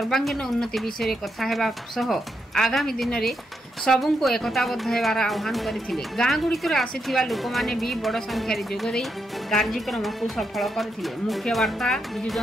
उन्नति विषय कथा हेबा सह आगामी दिन में सबुको एकताबद्ध हेबार आह्वान करथिले। गाँ गुड़िकर आसीथिबा लोक माने भी बड़ संख्यार जोग दे कार्यक्रम को सफल करथिले। मुख्य वार्ता बिजु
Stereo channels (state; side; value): normal; both; correlation 0.82